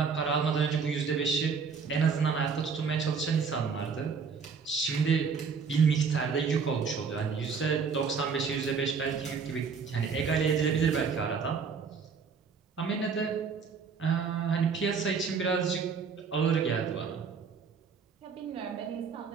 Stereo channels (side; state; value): left; quieter; 5.7 dB